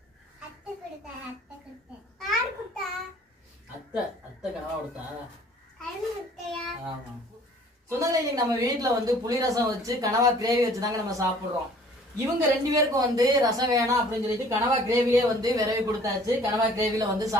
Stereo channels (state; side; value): normal; both; correlation 0.53